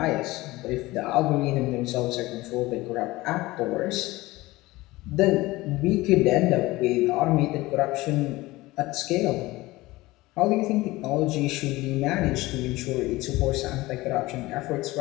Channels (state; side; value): quieter; right; 19.6 dB